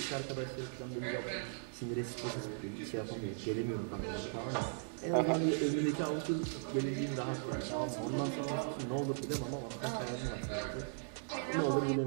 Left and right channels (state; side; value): silent; left; digital silence